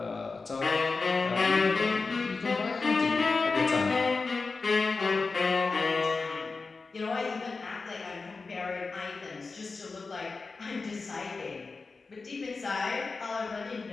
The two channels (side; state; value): right; quieter; 4.2 dB